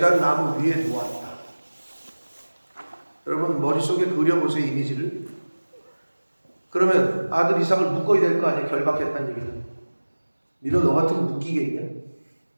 나무 위에 놓았다. 여러분 머릿속에 그려보세요, 이미지를. 그러면 아들 이삭을 묶어야 될 거 아니에요, 결박했다는 얘기는. 니너 너 같으면 묶이겠냐?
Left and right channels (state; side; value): inverted; both; correlation -1.00